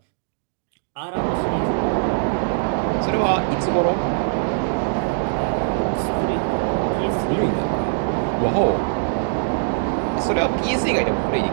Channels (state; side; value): silent; left; digital silence